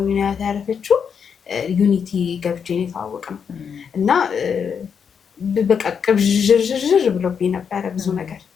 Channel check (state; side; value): quieter; right; 6.9 dB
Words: ነው አያት ያረፈችው። ዩኒቲ ገብቼ ነው የተዋወቅነው እና በቃ ቅብዥርዥር ብሎብኝ ነበረ ብዙ ነገር።